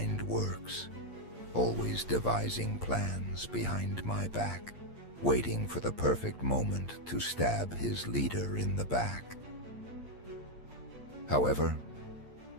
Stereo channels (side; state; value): left; late; 8.6 ms